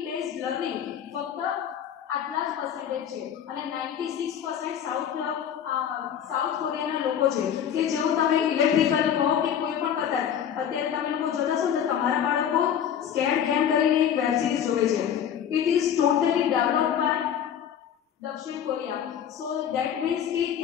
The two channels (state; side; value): quieter; right; 9.0 dB